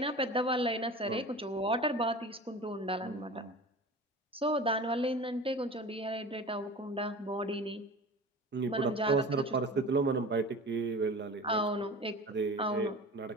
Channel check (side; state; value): both; normal; correlation 0.36